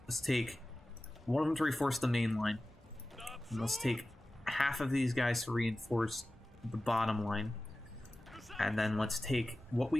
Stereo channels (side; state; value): both; normal; correlation 0.96